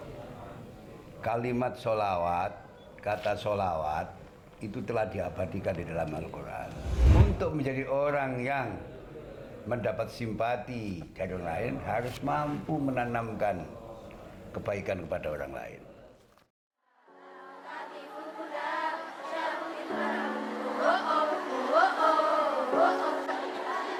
kalimat sholawat, kata sholawat itu telah diabadikan di dalam Al-Quran. Untuk menjadi orang yang mendapat simpati dari orang lain harus mampu menanamkan kebaikan kepada orang lain.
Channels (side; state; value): both; identical; correlation 1.00